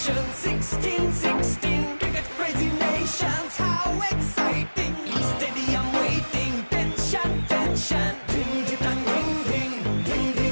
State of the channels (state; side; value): inverted; both; correlation -1.00